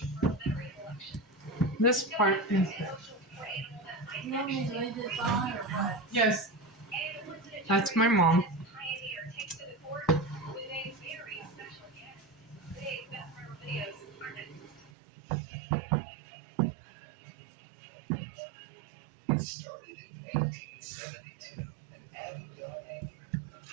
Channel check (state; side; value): drops out; left; at 14.9 s